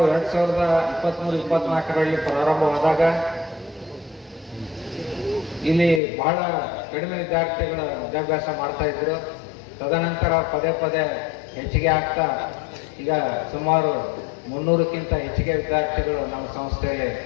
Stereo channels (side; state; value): right; drops out; at 6.0 s